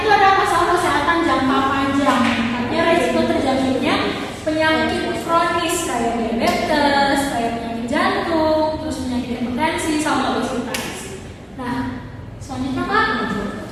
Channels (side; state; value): both; identical; correlation 1.00